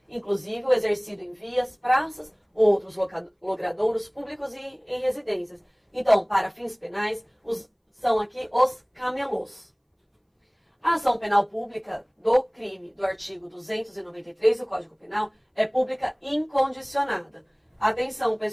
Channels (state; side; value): identical; both; correlation 1.00